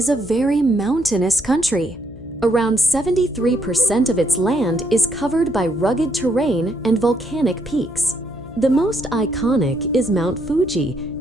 a very mountainous country. Around 73% of its land is covered by rugged terrain and volcanic peaks. The most iconic is Mount Fuji,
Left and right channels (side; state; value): left; noise; hum, 17 dB below the sound